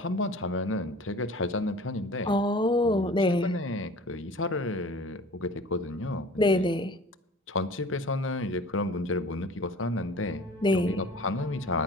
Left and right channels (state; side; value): normal; both; correlation 0.44